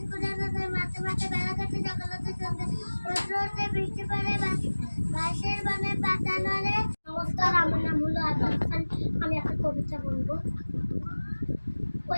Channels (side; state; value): both; inverted; correlation -1.00